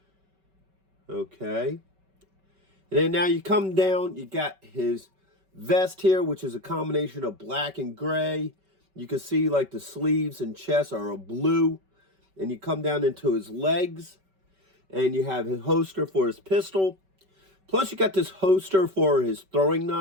Okay. And then now you come down, you got his vest here, which is a combination of black and gray. You can see like the sleeves and chest are a blue. And you come down into his legs, and you have his holster for his pistol. Plus, you got this holster for his throwing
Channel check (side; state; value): left; late; 5.2 ms